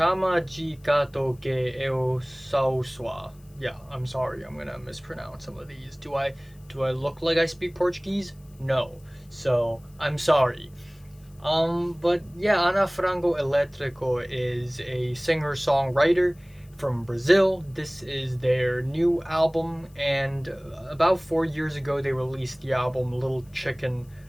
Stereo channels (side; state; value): left; noise; hiss, 30 dB below the sound